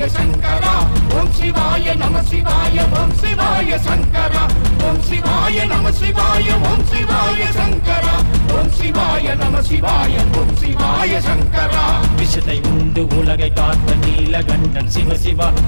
சங்கரா ஓம் சிவாய நம சிவாய ஓம் சிவாய சங்கரா ஓம் சிவாய நம சிவாய ஓம் சிவாய சங்கரா ஓம் சிவாய நம சிவாய ஓம் சிவாய சங்கரா விஷத்தை உண்டு உலகை காத்த நீலகண்டன் சிவசிவா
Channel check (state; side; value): inverted; both; correlation -1.00